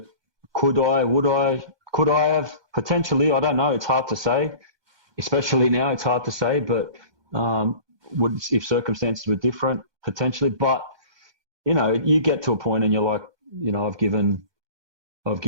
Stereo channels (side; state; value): left; late; 1.2 ms